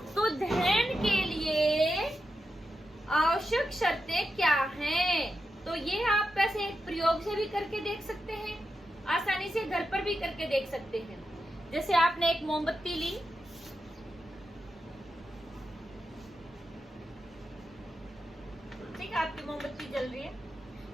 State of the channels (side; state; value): both; normal; correlation 0.88